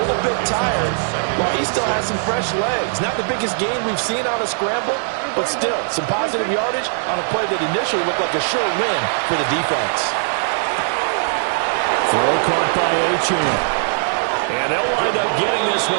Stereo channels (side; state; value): left; silent; digital silence